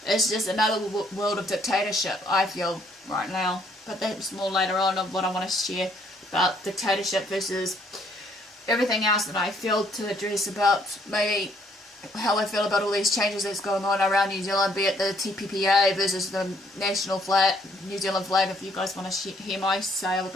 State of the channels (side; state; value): both; normal; correlation 0.66